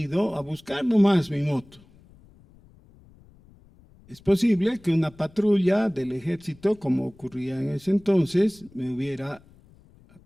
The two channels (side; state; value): left; noise; rumble, 27 dB below the sound